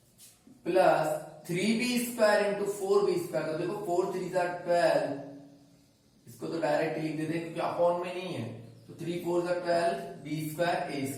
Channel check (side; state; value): both; identical; correlation 1.00